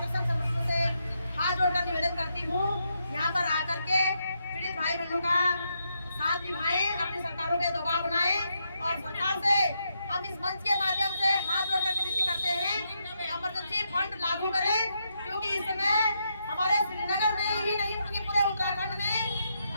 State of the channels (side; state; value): both; inverted; correlation -0.80